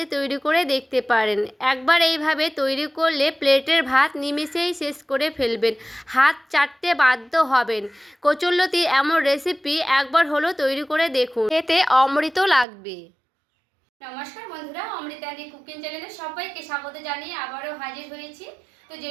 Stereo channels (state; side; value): drops out; left; at 12.7 s